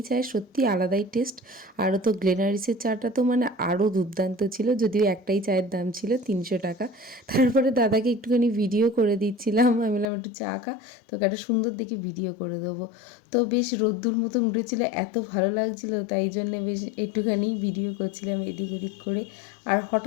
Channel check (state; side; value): drops out; right; at 10.1 s